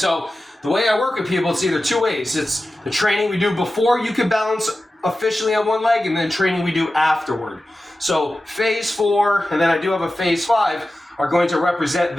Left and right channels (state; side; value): normal; both; correlation 0.94